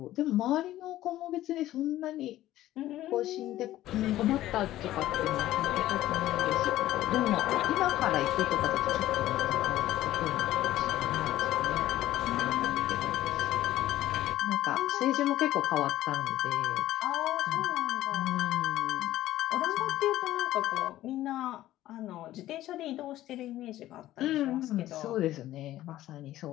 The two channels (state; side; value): quieter; right; 14.5 dB